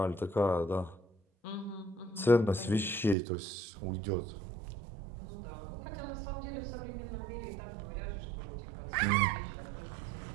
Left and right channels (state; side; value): drops out; left; at 3.2 s